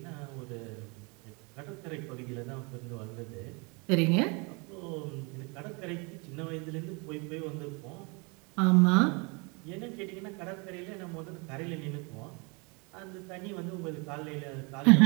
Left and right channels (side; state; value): left; quieter; 30.6 dB